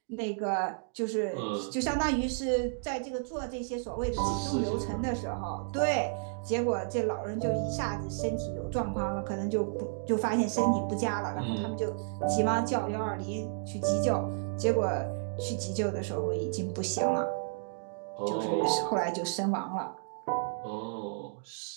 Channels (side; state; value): left; silent; digital silence